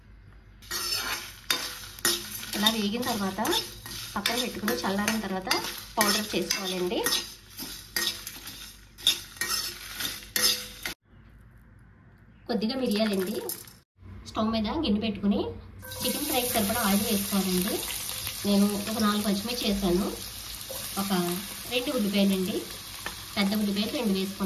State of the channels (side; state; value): both; identical; correlation 1.00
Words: ఇలా వేగిన తర్వాత పక్కన పెట్టుకుని చల్లారిన తర్వాత పౌడర్ చేసుకోవాలండి. కొద్దిగా మిరియాలండి. స్టవ్ మీద గిన్నె పెట్టుకుని చికెన్ ఫ్రైకి సరిపడా ఆయిల్ వేసుకోవాలండి. నేను ఒక 4 పచ్చిమిర్చి వేసాను, ఒక 2 ఉల్లిపాయలండి, పెద్ద ఉల్లిపాయలు 2